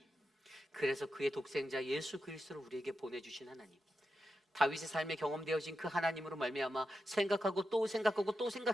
그래서 그의 독생자 예수 그리스도를 우리에게 보내주신 하나님, 다윗의 삶에 경험되어진 그 하나님으로 말미암아 생각하고 또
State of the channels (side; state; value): both; normal; correlation 0.88